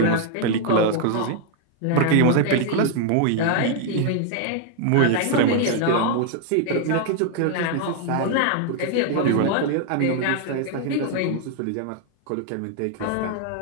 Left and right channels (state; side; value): different; both; correlation 0.00